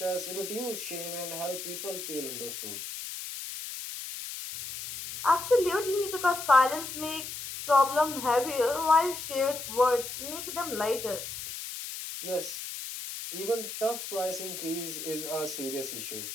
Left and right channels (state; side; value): noise; left; hiss, 8 dB below the sound